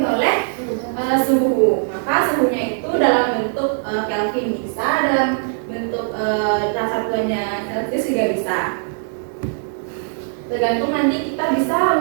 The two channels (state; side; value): silent; left; digital silence